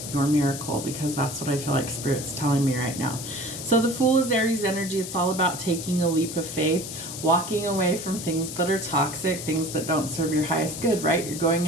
your miracle? Because that's what I feel like Spirit's telling me right now. So the Fool is Aries energy. It's all about taking a leap of faith, walking away from things that are toxic, things that don't serve your highest good, right? You're going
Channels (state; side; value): noise; left; hiss, 8 dB below the sound